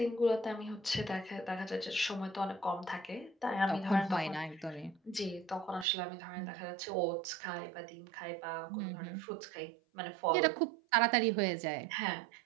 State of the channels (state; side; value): drops out; left; at 5.9 s